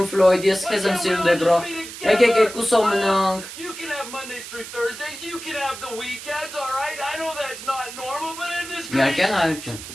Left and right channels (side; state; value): right; noise; hiss, 12 dB below the sound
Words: Ֆլոյդ, ես քեզ եմ սիրում Դեբրա։ Եկեք եկուսով մնանք։ You can have Mondays through Thursdays, you can have the weekends, all right? I know that's not normal, but in this Միակյան հայր ջան։